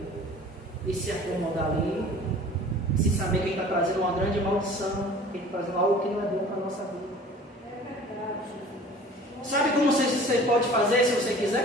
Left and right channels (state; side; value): normal; both; correlation 0.46